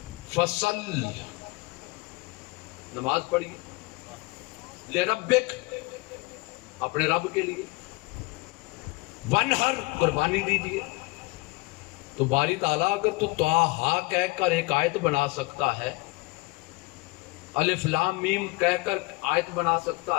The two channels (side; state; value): right; quieter; 25.1 dB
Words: فصل، نماز پڑھیے، لربک، اپنے رب کے لیے، وانحر، قربانی دیجیے. تو باری تعالیٰ اگر تو طٰہٰ کہہ کر ایک آیت بنا سکتا ہے، الف لام میم کہہ کر آیت بنا